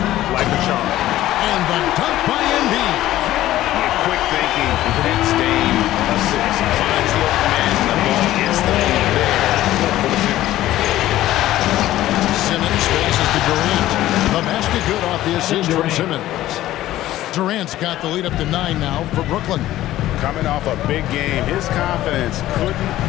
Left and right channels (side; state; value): right; quieter; 14.5 dB